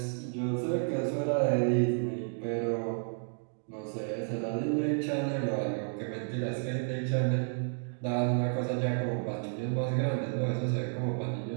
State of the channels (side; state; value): left; silent; 57 dB below the other